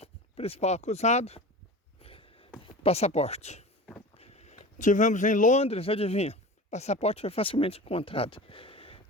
principal acusado, passaporte. Tivemos em Londres, adivinha? Passaporte foi facilmente encontrado.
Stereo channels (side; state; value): both; normal; correlation 0.33